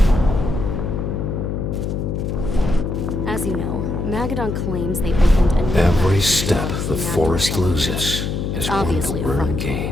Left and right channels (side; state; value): left; noise; hum, 2 dB below the sound